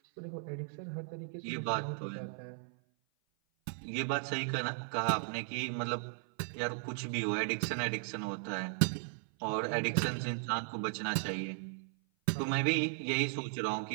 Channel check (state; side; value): silent; left; 54 dB below the other